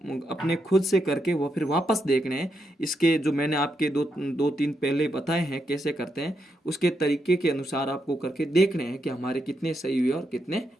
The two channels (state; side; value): normal; both; correlation 0.82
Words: अपने खुद से करके वो फिर वापस देखने हैं। इसके जो मैंने आपके दो तीन पहले बताए हैं कैसे करते हैं, उसके तरीके के अनुसार आपको करके देखने हैं कि हमारे कितने सही हुए और कितने